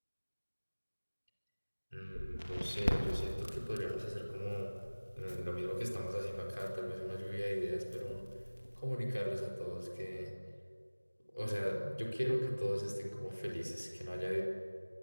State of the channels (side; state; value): both; inverted; correlation -1.00